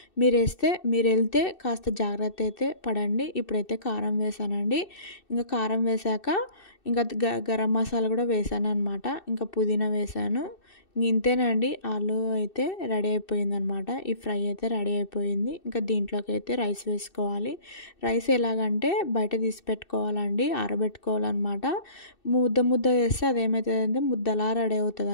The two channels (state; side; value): late; right; 2.6 ms